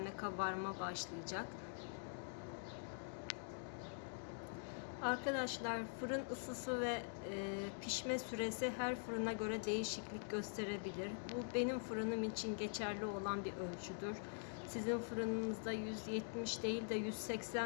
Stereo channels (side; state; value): right; silent; digital silence